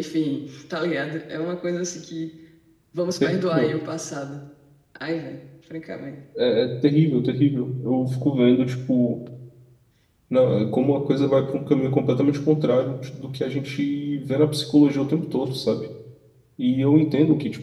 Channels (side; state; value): both; identical; correlation 1.00